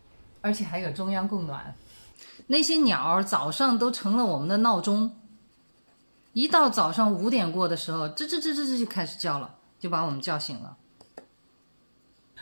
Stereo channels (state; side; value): inverted; both; correlation -1.00